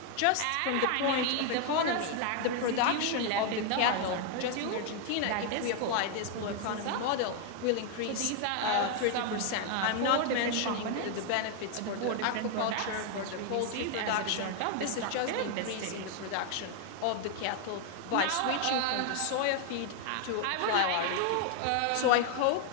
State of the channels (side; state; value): both; different; correlation 0.00